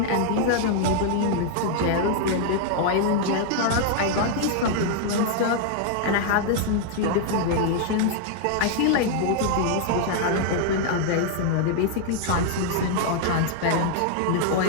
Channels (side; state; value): both; different; correlation -0.01